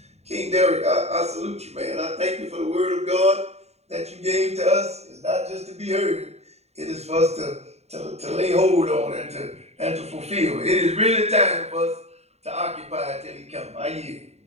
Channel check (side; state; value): left; late; 0.31 ms